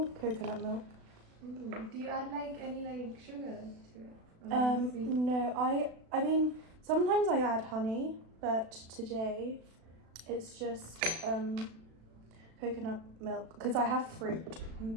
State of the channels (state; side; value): late; left; 36 ms